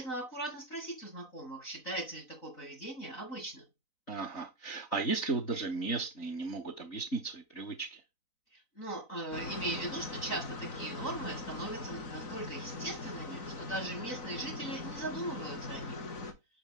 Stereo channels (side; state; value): right; late; 3.9 ms